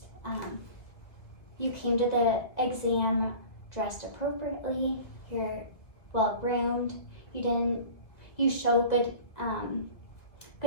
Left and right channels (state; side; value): late; right; 1.8 ms